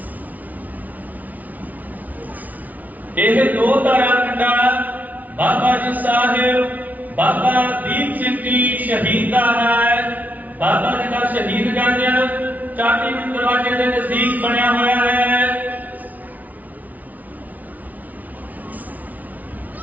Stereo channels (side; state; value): left; late; 0.075 ms